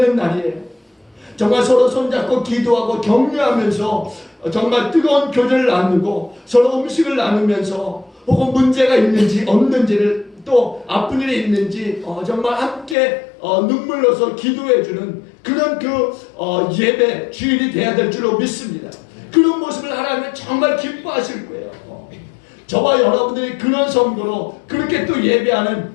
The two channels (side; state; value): right; drops out; at 13.0 s